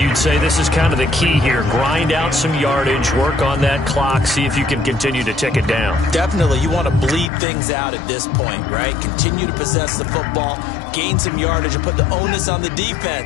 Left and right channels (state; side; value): drops out; right; at 7.3 s